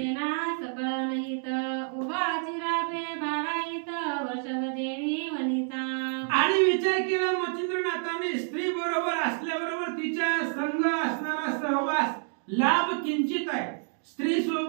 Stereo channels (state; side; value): silent; left; 59 dB below the other